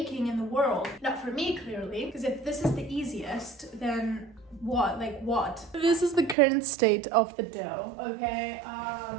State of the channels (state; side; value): drops out; left; at 6.4 s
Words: in the world. Not for me, clearly, because if this is the easiest, then what? Like what? This is the current state of the dough, okay?